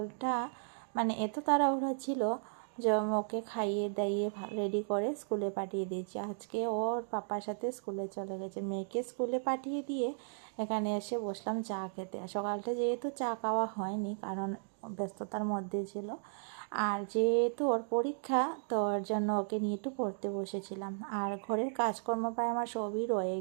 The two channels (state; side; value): silent; left; digital silence